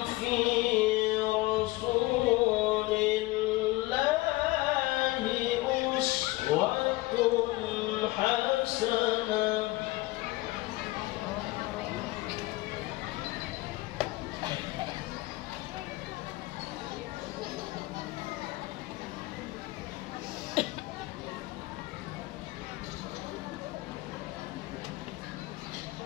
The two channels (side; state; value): right; quieter; 20.2 dB